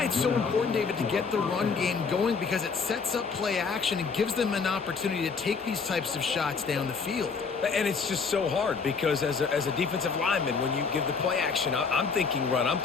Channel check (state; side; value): quieter; right; 5.2 dB